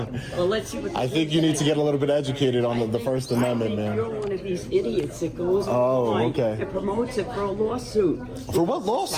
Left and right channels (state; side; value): identical; both; correlation 1.00